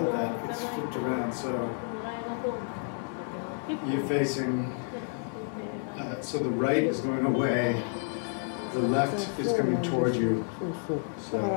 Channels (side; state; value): right; silent; 58 dB below the other